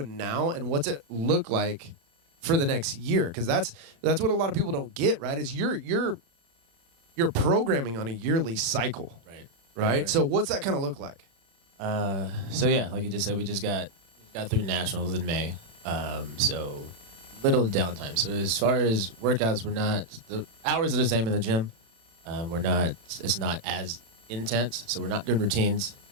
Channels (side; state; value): left; late; 36 ms